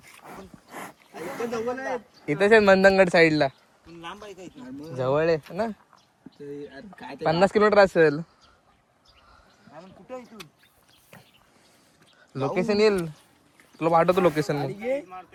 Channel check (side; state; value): both; identical; correlation 1.00